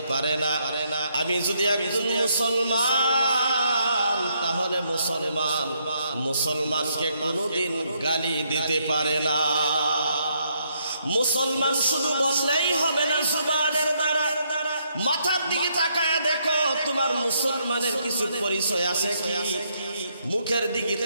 পারে না। আমি যদি একজন মুসলমান, তাহলে মুসলমানকে কোনোদিন গালি দিতে পারে না। মুসলমান শুধু বললেই হবে না জুবানের দ্বারা, মাথার দিকে তাকায় দেখো তোমার মুসলমানের কিছু পরিচয় আছে কি। মুখের দিকে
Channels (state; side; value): inverted; both; correlation -0.74